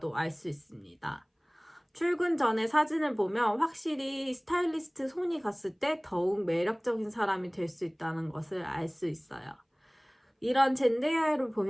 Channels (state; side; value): identical; both; correlation 1.00